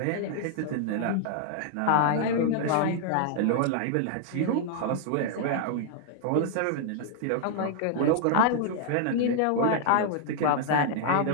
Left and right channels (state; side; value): different; both; correlation -0.01